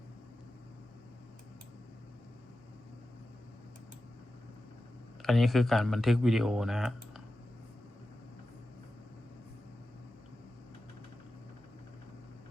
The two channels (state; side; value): normal; both; correlation 0.93